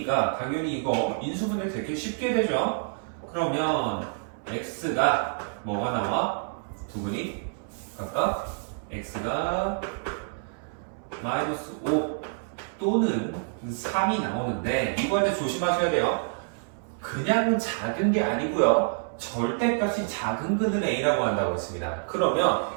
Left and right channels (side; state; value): left; silent; 60 dB below the other